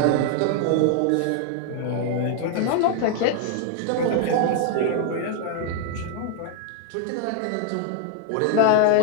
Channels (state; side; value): different; both; correlation 0.00